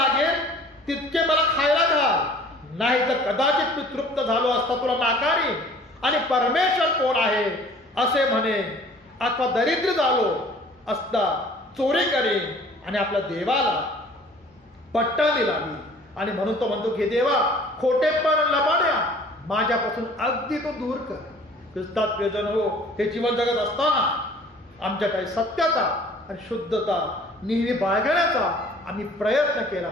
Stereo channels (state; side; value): normal; both; correlation 0.51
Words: तितके मला खायला घाल, नाही तर कदाचित मी तृप्त झालो असता तुला नाकारीन आणि परमेश्वर कोण आहे असे म्हणे, अथवा दरिद्र झालो असता चोरी करेन आणि आपल्या देवाला पट्टाणी लावी. आणि म्हणून तो म्हणतो की देवा, खोटेपण लबाड्या माझ्यापासून अगदी तो दूर कर. ख्रिस्तात प्रियजन हो, हे जीवन जगत असताना आमच्या काही सत्यता आणि शुद्धता नेहमी बाळगण्याचा आम्ही प्रयत्न केला